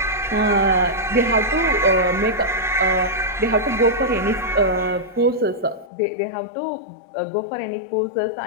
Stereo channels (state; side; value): drops out; right; at 5.9 s